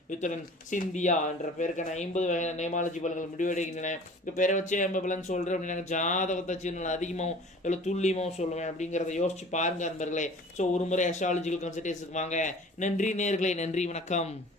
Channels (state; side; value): normal; both; correlation 0.45